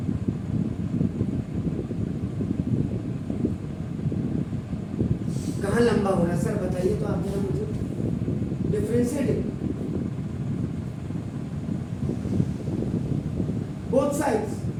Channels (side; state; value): both; identical; correlation 1.00